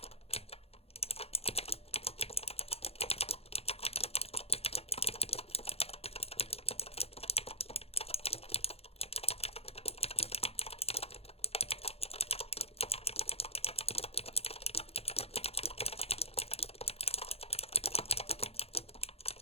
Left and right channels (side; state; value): right; late; 0.29 ms